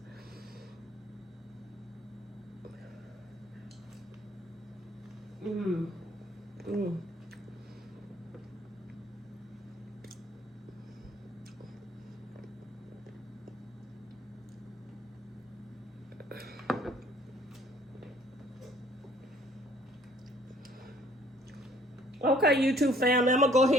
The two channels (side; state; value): both; normal; correlation 0.59